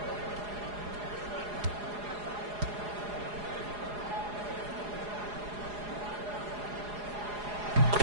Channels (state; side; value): late; left; 4.8 ms